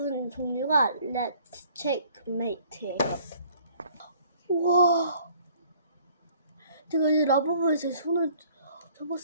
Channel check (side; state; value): both; inverted; correlation -0.56